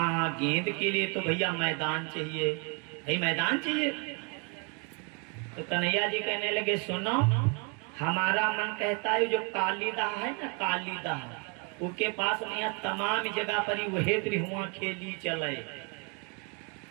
गेंद के लिए तो भैया मैदान चाहिए, भाई मैदान चाहिए। तो कन्हैया जी कहने लगे सुनो हमारा मन कहता है जो कालीदा है ना, कालीदा उसके पास में यहाँ तमाम जगह पर ही वही त्रिहुआ खेली चले।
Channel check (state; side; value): quieter; left; 35.1 dB